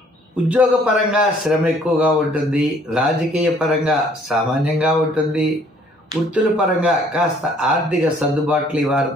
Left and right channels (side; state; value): both; normal; correlation 0.60